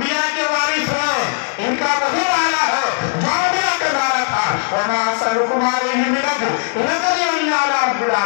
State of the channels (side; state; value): right; silent; 68 dB below the other